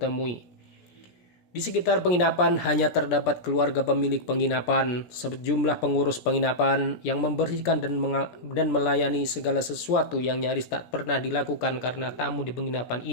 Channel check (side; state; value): right; late; 17 ms